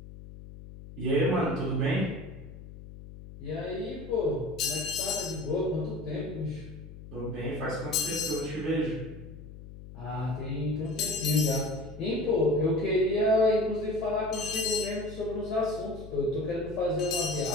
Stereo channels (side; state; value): left; noise; hum, 15 dB below the sound